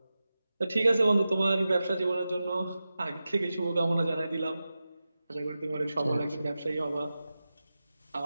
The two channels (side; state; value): both; inverted; correlation -0.94